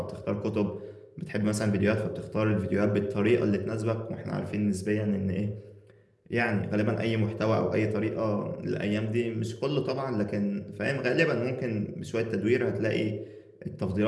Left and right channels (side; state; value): both; identical; correlation 1.00